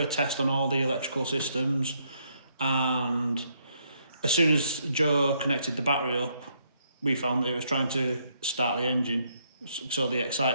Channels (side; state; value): both; inverted; correlation -0.73